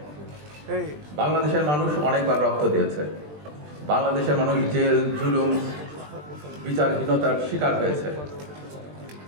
বাংলাদেশের মানুষ অনেকবার রক্ত দিয়েছে। বাংলাদেশের মানুষ জেল, জুলুম, বিচারহীনতার শিকার হয়েছে।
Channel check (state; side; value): late; left; 20 ms